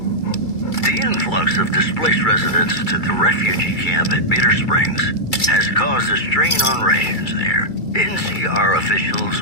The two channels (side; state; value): right; late; 2.3 ms